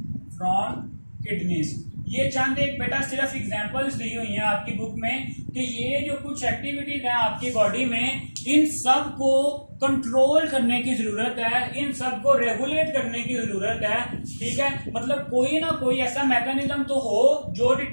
from kidneys. ये चंद एक बेटा सिर्फ एग्जांपल्स दी हुई हैं आपकी बुक में कि ये जो कुछ एक्टिविटीज हैं आपकी बॉडी में, इन सब को कंट्रोल करने की जरूरत है, इन सब को रेगुलेट करने की जरूरत है, ठीक है। मतलब कोई ना कोई ऐसा मैकेनिज्म तो हो जो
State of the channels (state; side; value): inverted; both; correlation -1.00